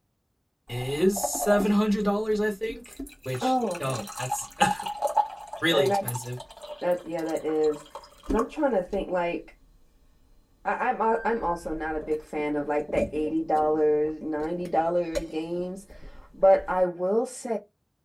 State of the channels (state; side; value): identical; both; correlation 1.00